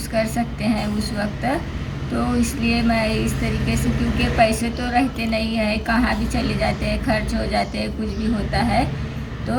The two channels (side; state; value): both; identical; correlation 1.00